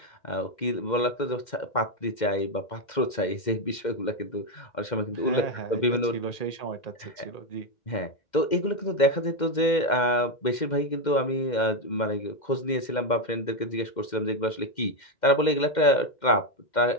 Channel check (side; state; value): right; late; 2.1 ms